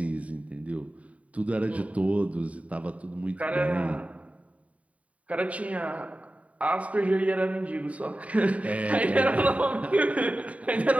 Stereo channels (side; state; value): left; late; 0.067 ms